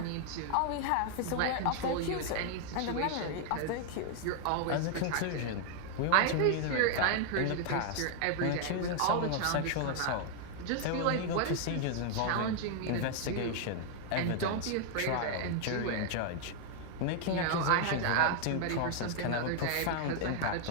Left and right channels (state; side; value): different; both; correlation 0.00